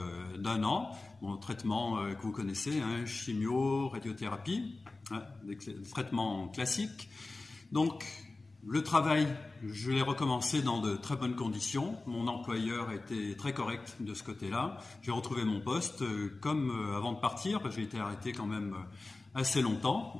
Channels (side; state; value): right; quieter; 3.3 dB